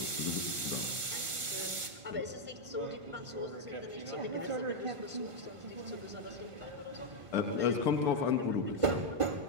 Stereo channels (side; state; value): left; late; 1.5 ms